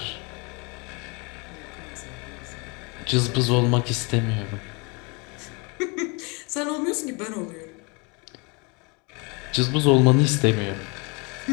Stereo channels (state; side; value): quieter; right; 30.4 dB